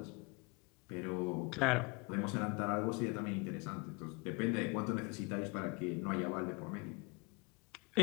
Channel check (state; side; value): quieter; right; 28.9 dB